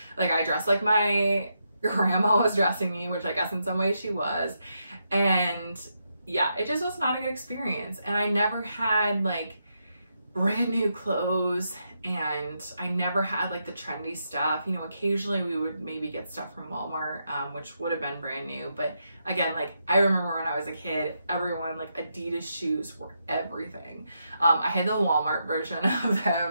Like I dressed like my grandma was dressing me, which I guess in some ways she was. And yeah, it just was not a good experience. And I never had like brand new clothes and I never had like the trendy stuff. You know, occasionally we would maybe get stuff from Walmart, which would have been brand new. But again, like I remember when I was a kid, everyone, like Adidas shoes were everything. I had the Walmart version of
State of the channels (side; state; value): both; inverted; correlation -0.82